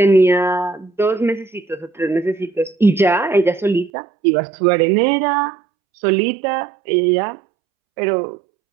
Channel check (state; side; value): drops out; left; at 3.9 s